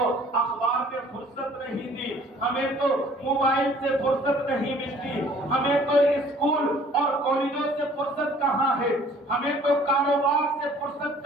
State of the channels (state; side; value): normal; both; correlation 0.54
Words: اخبار میں فرصت نہیں دی، ہمیں تو موبائل سے فرصت نہیں ملتی، ہمیں تو اسکول اور کالجوں سے فرصت کہاں ہے، ہمیں تو کاروبار سے فرصت